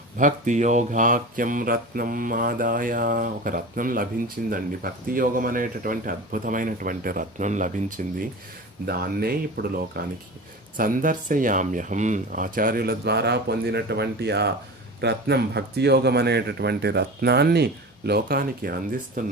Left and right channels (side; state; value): both; normal; correlation 0.32